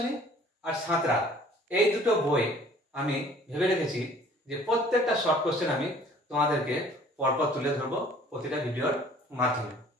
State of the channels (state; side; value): normal; both; correlation 0.52